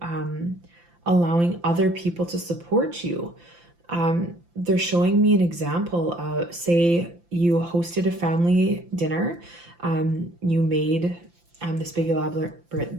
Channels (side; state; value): left; late; 5.8 ms